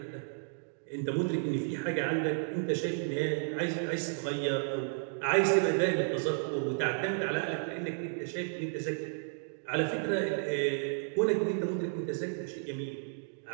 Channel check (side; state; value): left; silent; digital silence